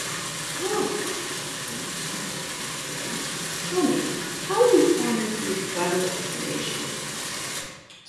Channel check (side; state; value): both; identical; correlation 1.00